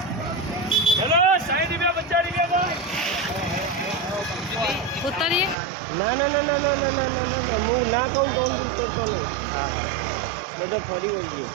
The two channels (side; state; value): left; drops out; at 5.6 s